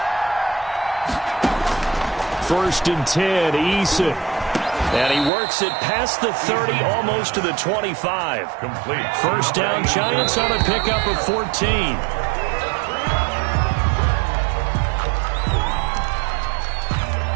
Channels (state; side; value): drops out; left; at 5.3 s